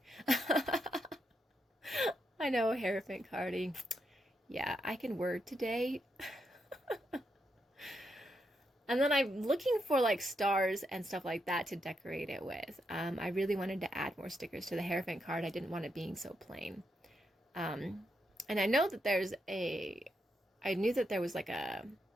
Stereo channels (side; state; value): both; normal; correlation 0.81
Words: I know, Hierophant cardy. Yeah, I can word today. And then I'm looking for like stars and stuff like that to decorate it with. I really wanted to add more stickers to the Hierophant card. I didn't want it being so plain. And I know that I knew that there was like a